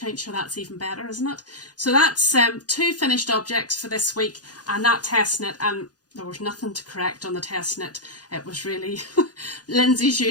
sure, that's even better, isn't it? So that's 2 finished objects for this week, and that test knit, and there was nothing to correct on the test knit. It was really Lindsay's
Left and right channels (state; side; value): late; right; 0.69 ms